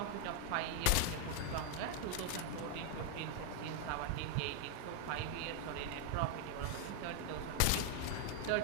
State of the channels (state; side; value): different; both; correlation 0.01